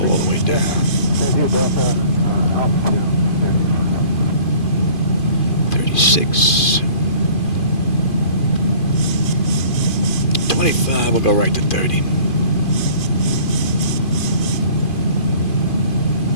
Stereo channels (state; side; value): late; right; 2.5 ms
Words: all the way down. 36. 25, we'll go right to 30.